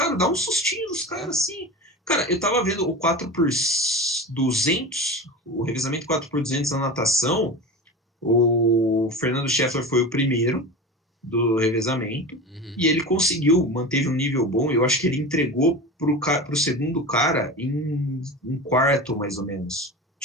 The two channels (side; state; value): both; normal; correlation 0.29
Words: dá um sustinho nos caras, assim. Cara, eu tava vendo o 4x200, o revezamento 4x200 na natação. O Fernando Scheffler foi o primeiro do revezamento. E ele manteve um nível bom. Eu acho que ele entregou pro segundo cara em um quarto, mais ou menos.